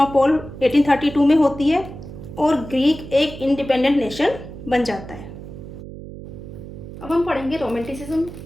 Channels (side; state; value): right; noise; hum, 13 dB below the sound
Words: 1832 में होती है और ग्रीक एक इंडिपेंडेंट नेशन बन जाता है। अब हम पढ़ेंगे रोमांटिसिज्म।